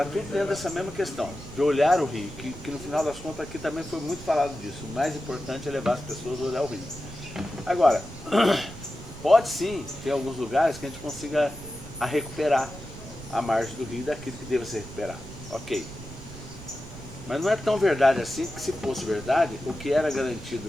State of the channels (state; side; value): noise; right; rumble, 14 dB below the sound